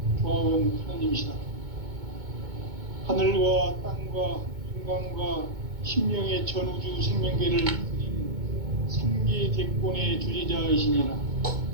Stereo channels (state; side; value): late; left; 2.2 ms